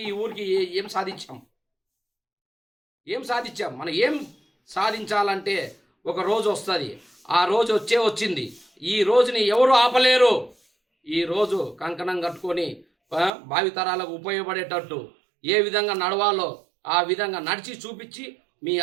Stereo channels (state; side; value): drops out; left; at 13.3 s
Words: ఈ ఊరికి ఏం సాధించాం, మనం ఏం సాధించాలంటే ఒక రోజు వస్తుంది. ఆ రోజు వచ్చింది. ఈ రోజుని ఎవరు ఆపలేరు. ఈ రోజు కంకణం కట్టుకొని భావితరాలకు ఉపయోగపడేటట్టు ఏ విధంగా నడవాలో ఆ విధంగా నడిచి చూపించి మీ